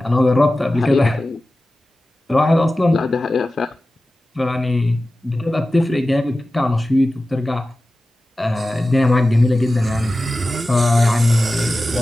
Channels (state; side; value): normal; both; correlation 0.95